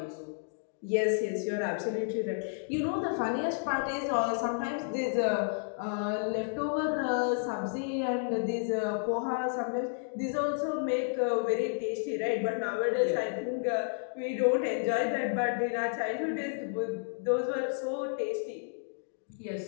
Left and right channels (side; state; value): right; silent; digital silence